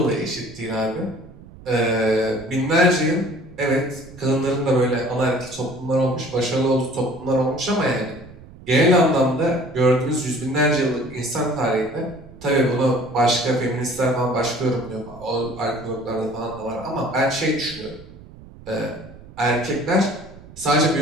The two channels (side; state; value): right; noise; rumble, 19 dB below the sound